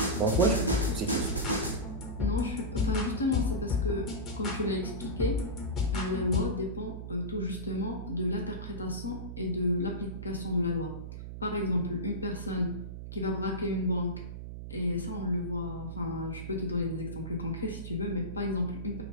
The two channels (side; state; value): right; noise; hum, 8 dB below the sound